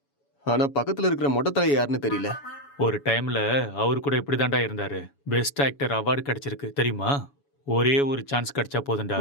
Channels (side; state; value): right; late; 7.1 ms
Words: ஆனா பக்கத்துல இருக்கிற மொட்டை தலை யாருன்னு தெரியல. ஒரு டைம்ல அவரு கூட இப்படிதான்டா இருந்தாரு. பெஸ்ட் ஆக்டர் அவார்டு கிடைச்சிருக்கு தெரியுமா? ஒரே ஒரு சான்ஸ் கிடைச்சா போதும்டா,